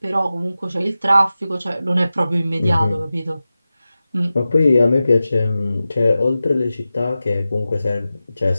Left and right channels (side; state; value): both; inverted; correlation -0.94